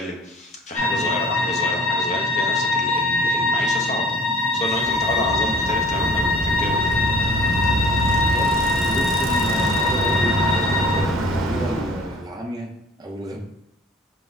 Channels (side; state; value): both; normal; correlation 0.48